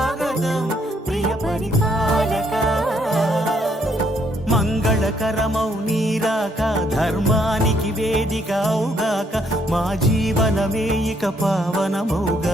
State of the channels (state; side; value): normal; both; correlation 0.70